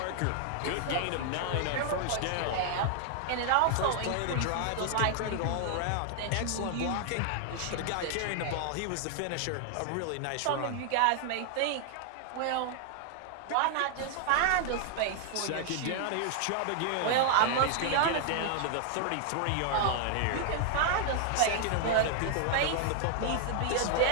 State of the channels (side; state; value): both; different; correlation 0.00